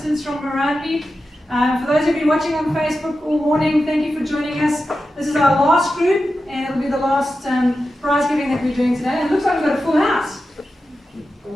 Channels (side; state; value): both; normal; correlation 0.91